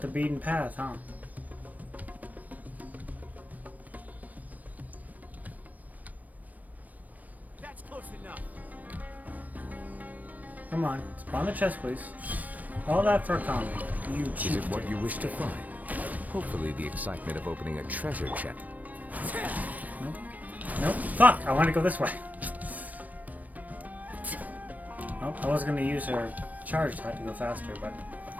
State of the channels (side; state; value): left; late; 0.077 ms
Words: the beaten path, huh? That's close enough. Come on, spawn the chest, please. All that for a comment. You cheat. Is it what you wish to find? Hopefully the excitement of opening a treasure chest. Nope. Nope. Fuck! I want to go this way. Oh, I was gonna use her charge to go faster, but